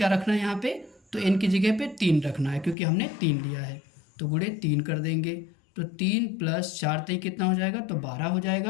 रखना है यहाँ पे, तो n की जगह पे 3 रखना है क्योंकि हमने 3 लिया है। तो गुणे 3 कर देंगे, तो 3+4 तय कितना हो जाएगा, तो 12 हो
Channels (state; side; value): drops out; right; at 2.8 s